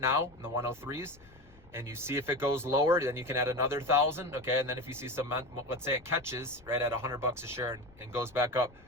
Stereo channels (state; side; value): noise; left; rumble, 25 dB below the sound